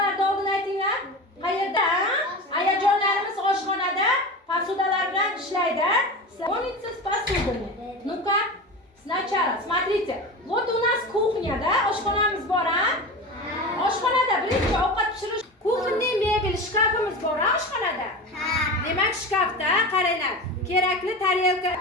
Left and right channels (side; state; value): both; normal; correlation 0.28